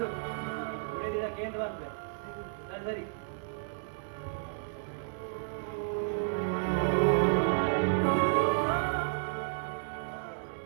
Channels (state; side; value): silent; left; digital silence